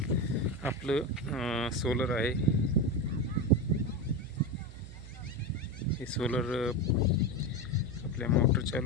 आपलं सोलर आहे. हे सोलर आपल्या मोटर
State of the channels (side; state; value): right; noise; hum, 14 dB below the sound